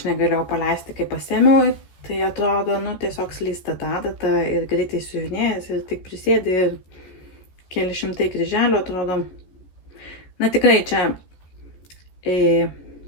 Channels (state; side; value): late; right; 14 ms